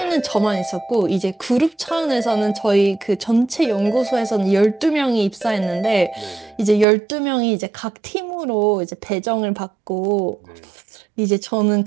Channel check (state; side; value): drops out; left; at 6.9 s